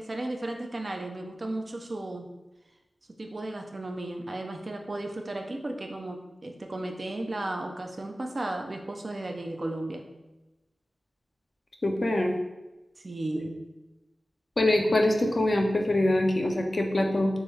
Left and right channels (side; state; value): both; normal; correlation 0.95